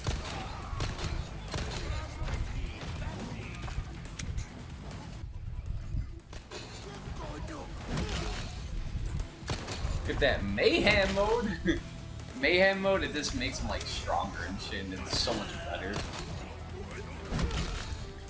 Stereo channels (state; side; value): identical; both; correlation 1.00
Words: Look at that mayhem mode. Mayhem mode, it just makes them like stronger and shit, and it's so much better.